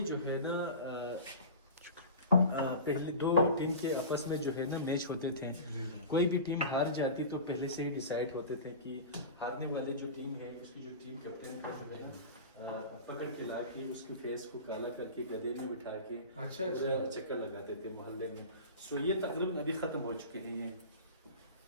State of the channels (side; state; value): both; inverted; correlation -0.32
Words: जो है ना पहले 2 टीम के आपस में जो है ना मैच होते थे, कोई भी टीम हार जाती तो पहले से ही डिसाइड होते थे कि हारने वाले जो टीम है उसकी जो टीम कैप्टन का जो है ना पकड़ के ला के उसकी फेस को काला करके गधे में बिठा के चक्कर लगाते थे मोहल्ले में। सो ये तकरीबन अभी ख़त्म हो चुके हैं।